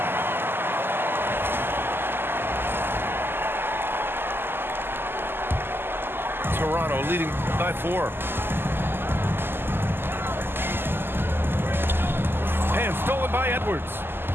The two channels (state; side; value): late; left; 0.10 ms